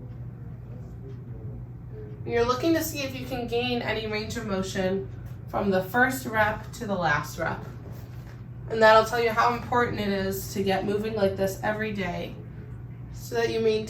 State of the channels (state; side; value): identical; both; correlation 1.00